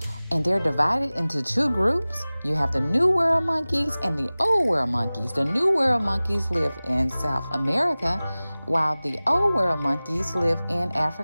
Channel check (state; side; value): inverted; both; correlation -0.99